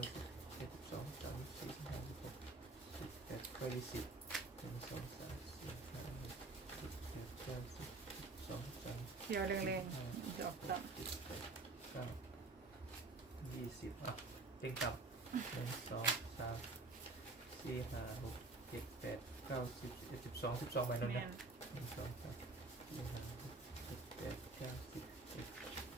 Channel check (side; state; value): left; quieter; 3.4 dB